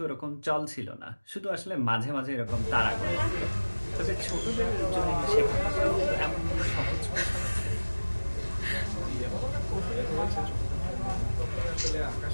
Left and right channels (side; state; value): both; inverted; correlation -1.00